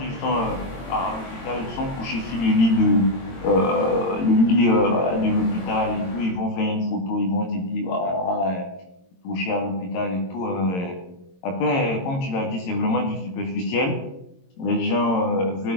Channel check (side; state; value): right; late; 22 ms